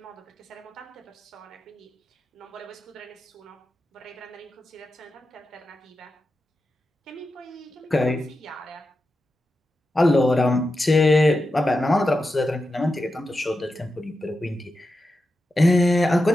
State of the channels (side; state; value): both; normal; correlation 0.90